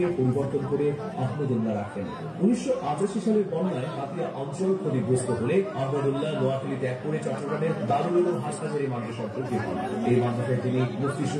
পরিবর্তন করে আহমদুল্লাহ রাখেন। 1985 সালের বন্যায় হাতিয়া অঞ্চল ক্ষতিগ্রস্ত হলে আহমদুল্লাহ নোয়াখালী ত্যাগ করে চট্টগ্রামের দারুল উলুম হাসনাজারি মাদ্রাসায় ভর্তি হন। এই মাদ্রাসায় তিনি মুফতি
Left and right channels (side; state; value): both; identical; correlation 1.00